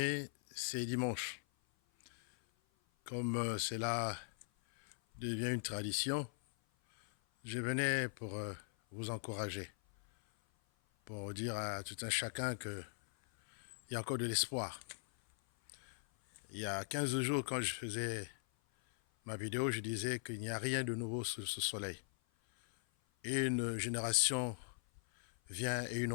c'est dimanche. Comme cela devient une tradition, je venais pour vous encourager, pour dire à tout un chacun qu'il y a encore de l'espoir. Il y a 15 jours, quand je faisais ma vidéo, je disais qu'il n'y a rien de nouveau sous ce soleil. Une génération vient et une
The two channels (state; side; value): silent; right; 51 dB below the other